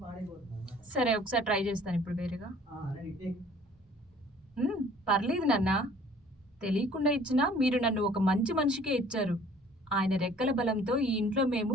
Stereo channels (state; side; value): normal; both; correlation 0.54